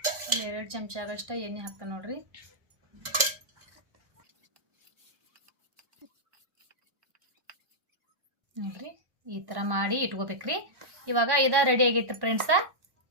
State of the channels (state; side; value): late; left; 1.1 ms